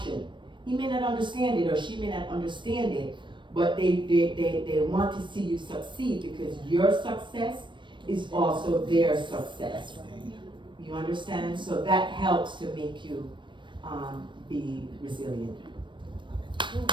he may not understand it or she may not understand it, but they want to see you succeed because your success is also their success. You understand? So that helps to make you be resilient.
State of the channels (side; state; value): left; late; 0.23 ms